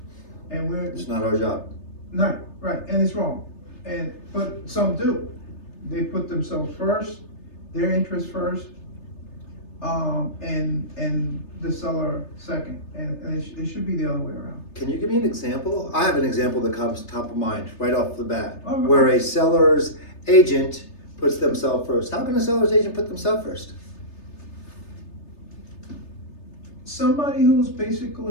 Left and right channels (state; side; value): late; right; 3.3 ms